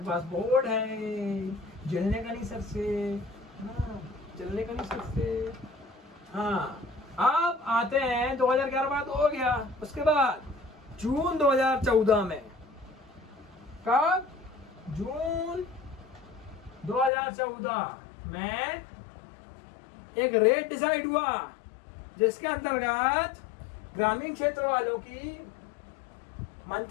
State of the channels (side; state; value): right; drops out; at 17.1 s